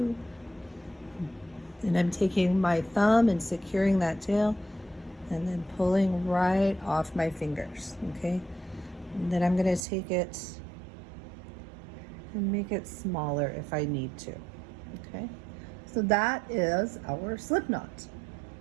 And I'm taking my thumb and securing that tail and then pulling right off my fingers, okay? And then I'm going to take it and make it smaller if I need to, okay? So that is our slip knot.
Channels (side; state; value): left; drops out; at 9.8 s